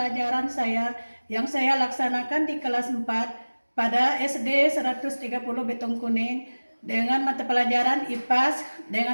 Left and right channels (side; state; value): both; inverted; correlation -1.00